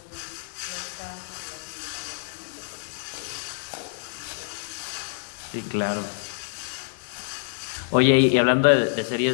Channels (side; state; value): right; silent; digital silence